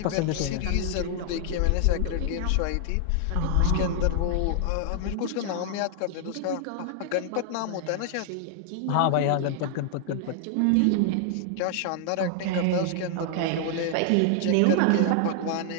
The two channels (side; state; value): both; different; correlation 0.00